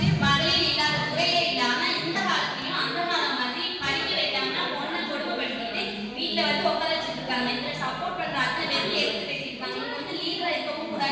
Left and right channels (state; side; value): identical; both; correlation 1.00